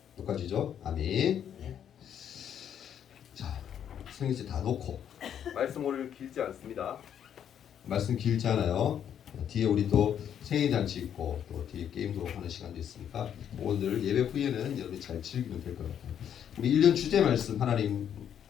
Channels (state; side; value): quieter; right; 9.2 dB